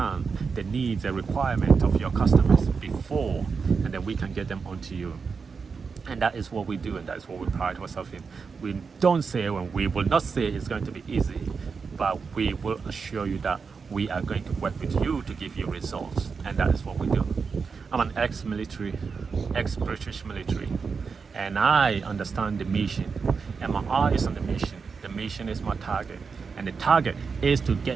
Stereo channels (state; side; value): quieter; left; 5.3 dB